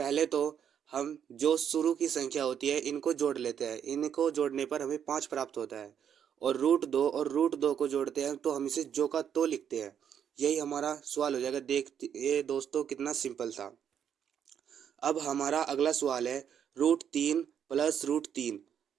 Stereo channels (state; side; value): quieter; left; 8.6 dB